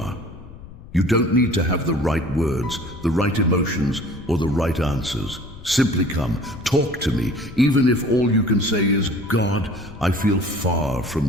You don't need to have the right words, the right emotions, or the right answers. Simply come, talk to me, even if all you can say is, God, I feel far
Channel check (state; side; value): noise; left; rumble, 17 dB below the sound